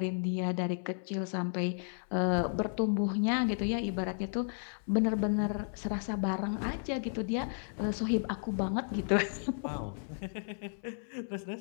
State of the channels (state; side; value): silent; right; 55 dB below the other